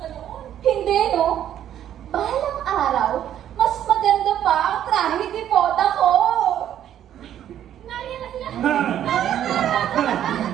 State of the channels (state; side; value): quieter; left; 10.8 dB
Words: Hindi, no? Balang araw, mas maganda pa ang trahe ni boda ko. Nariyan na sila.